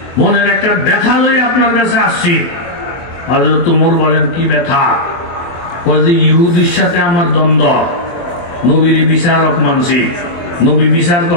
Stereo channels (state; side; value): late; right; 24 ms